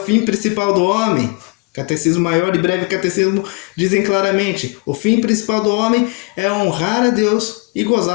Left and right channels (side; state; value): right; quieter; 28.4 dB